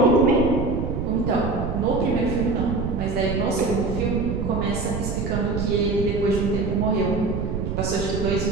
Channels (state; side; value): noise; right; rumble, 3 dB below the sound